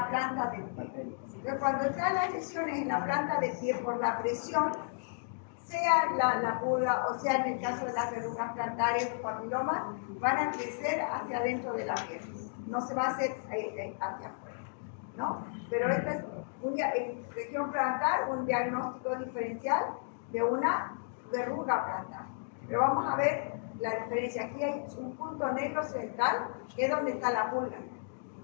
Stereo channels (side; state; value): right; silent; digital silence